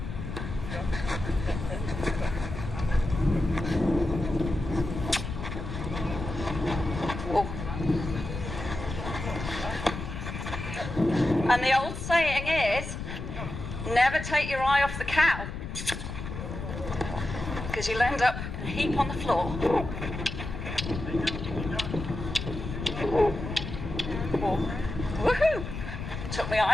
Whoa. And the old saying is, never take your eye off the cow, because you'll end up in a heap on the floor. Woohoo! Took my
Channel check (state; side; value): noise; left; rumble, 7 dB below the sound